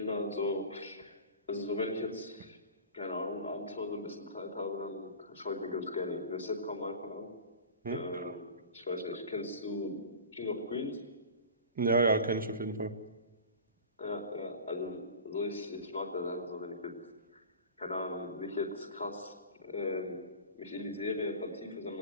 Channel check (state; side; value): inverted; both; correlation -0.36